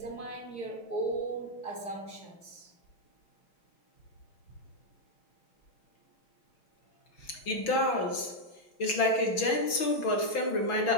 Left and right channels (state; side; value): late; right; 6.2 ms